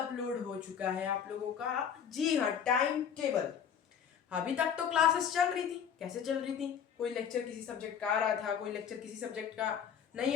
हो चुका है आप लोगों का। जी हाँ, टाइम टेबल। अभी तक तो क्लासेस चल रही थी। कैसे चल रही थी? कोई लेक्चर किसी सब्जेक्ट का आ रहा था, कोई लेक्चर किसी सब्जेक्ट का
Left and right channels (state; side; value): quieter; right; 8.0 dB